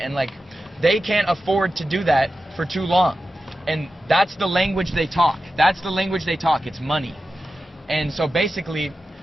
like, they can't afford to do that for too long. And that's the language they talk. That's the language they talk. It's money. And so basically,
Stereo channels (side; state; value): both; normal; correlation 0.92